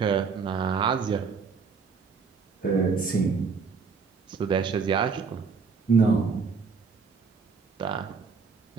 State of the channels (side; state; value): left; quieter; 5.2 dB